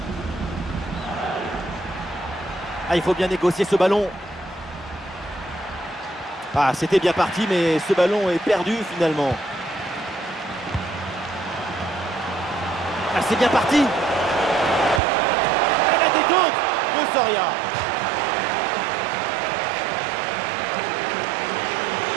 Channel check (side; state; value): left; drops out; at 15.0 s